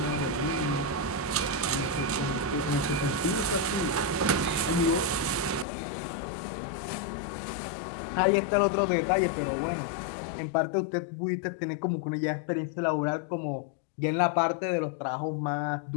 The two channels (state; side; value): drops out; right; at 5.7 s